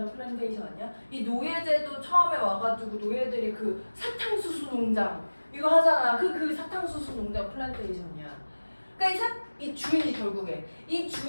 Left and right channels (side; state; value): both; inverted; correlation -1.00